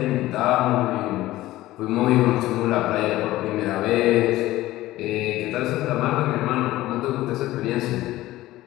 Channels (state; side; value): quieter; right; 16.4 dB